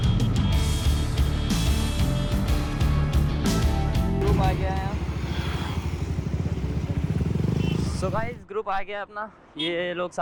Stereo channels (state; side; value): identical; both; correlation 1.00